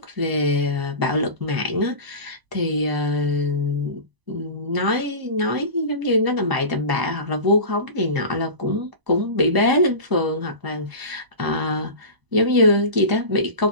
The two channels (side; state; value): left; late; 1.0 ms